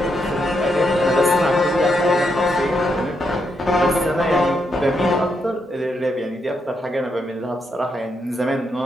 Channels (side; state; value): both; normal; correlation 0.80